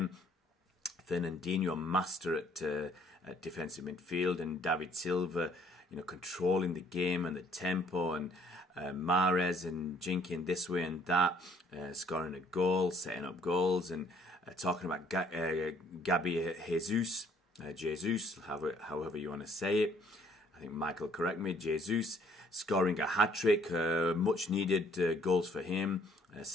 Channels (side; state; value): both; normal; correlation 0.61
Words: Fernandinho, a master at defensive midfield, and David Silva, controlling the game and the tempo, and Mahrez and jinking this way and that, scoring a goal, setting up goals, and talking about Gabi Jesus, however you want to say it. I think Michael correct me. Jesus scoring a hat-trick, much needed goals for him.